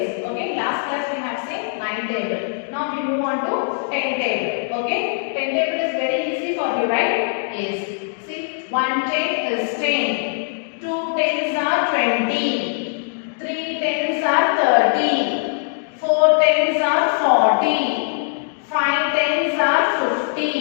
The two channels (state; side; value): silent; right; digital silence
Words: Okay, last class we have seen 9 table. Now we move on to 10 table. Okay, 10 table is very easy for you, right? Yes. See, 1 10 is 10, 2 tens are 20, 3 tens are 30, 4 tens are 40. 5 tens are